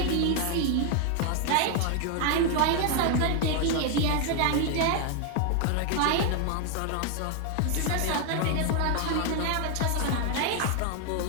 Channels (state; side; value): different; both; correlation 0.00